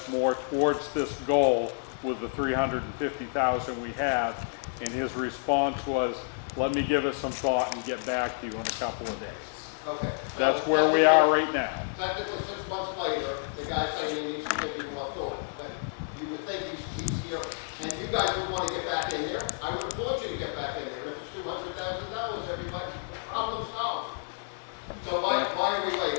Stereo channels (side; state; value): right; silent; digital silence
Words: more towards this goal with the 350,000 we have. And his response was, let me give it some thought and get back to you in a couple of days. Okay. so That's where we are right now. Technically, 6 months later, the guy's saying he needs to give you more thought. But you would think he's here, and you guys would want to get back in there. I would applaud you to get back in there. If it's $200,000, everybody, problem solved. So why are we